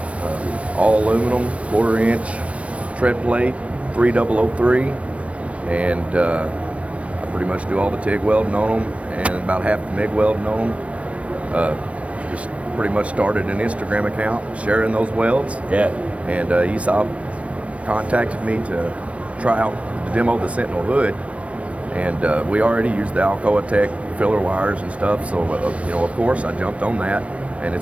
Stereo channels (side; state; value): left; late; 0.063 ms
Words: all aluminum, 1/4 inch tread plate, 3003, and I pretty much do all the TIG welding on them and about half the MIG welding on them. Just pretty much started an Instagram account sharing those welds. Yeah. And ESAB contacted me to try out to demo the Sentinel hood, and we already used the Alcoa Tech filler wires and stuff, so of course I jumped on that, and